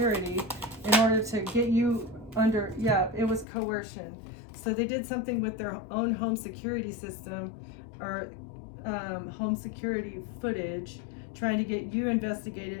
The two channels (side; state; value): right; drops out; at 3.5 s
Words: in order to get you under, yeah, it was coercion. So they did something with their own home security system, or home security footage, trying to get you